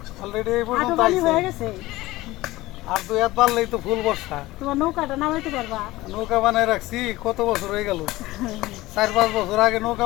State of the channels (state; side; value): quieter; right; 18.4 dB